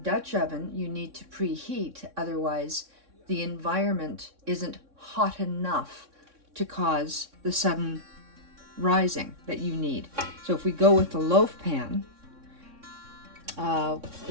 Dutch oven, you need to preheat, otherwise the environment isn't hot enough to cause the sudden rising that you need. So if we go with the loaf pan,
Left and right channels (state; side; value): late; left; 3.6 ms